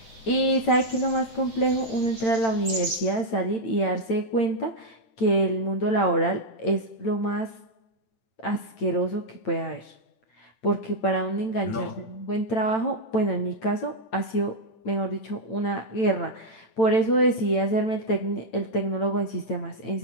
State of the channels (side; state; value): right; late; 8.9 ms